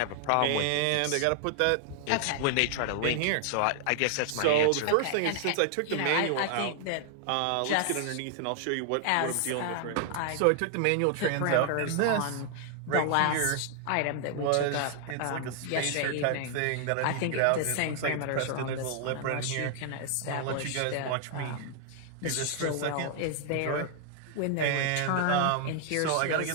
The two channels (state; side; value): different; both; correlation 0.00